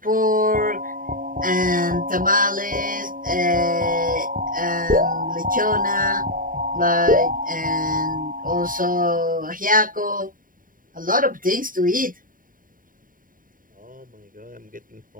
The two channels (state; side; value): late; left; 0.40 ms